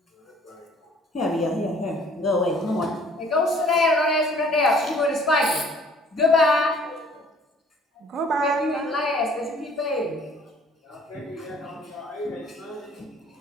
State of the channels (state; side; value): normal; both; correlation 0.55